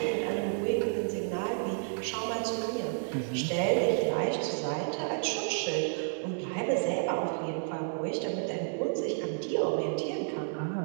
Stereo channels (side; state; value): left; silent; digital silence